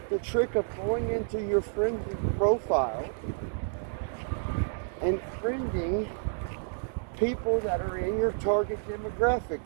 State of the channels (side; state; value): left; silent; digital silence